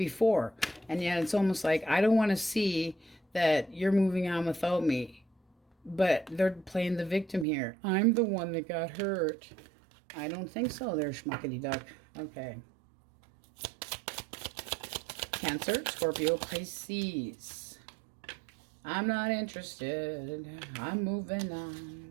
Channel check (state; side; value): drops out; left; at 7.5 s